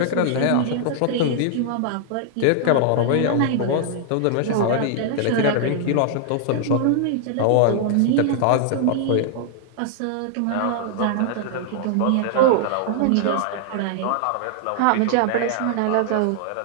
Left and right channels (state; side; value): different; both; correlation -0.01